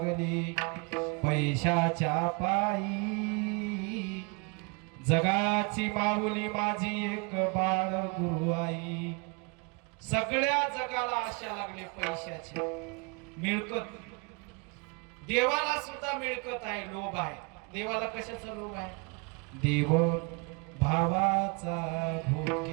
पैशाच्या पायी, जगाची माऊली माझी एक बाळ गुरु आई. सगळ्या जगाला आशा लागली पैशाची, मिळकत. देवाला सुद्धा मिळकत आहे, लोभ आहे. देवाला कशाचा लोभ आहे? देव भावाचा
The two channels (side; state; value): left; quieter; 32.6 dB